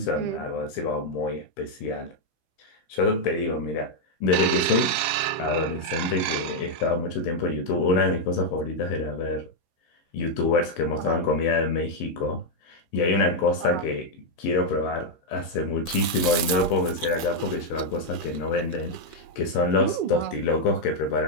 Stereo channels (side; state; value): right; late; 15 ms